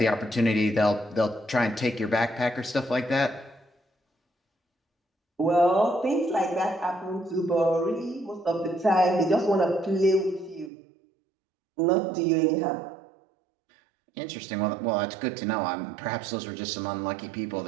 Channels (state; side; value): drops out; left; at 10.7 s